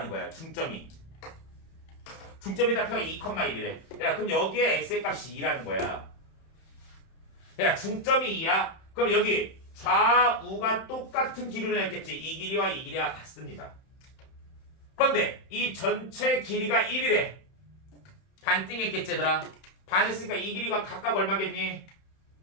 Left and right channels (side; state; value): right; late; 31 ms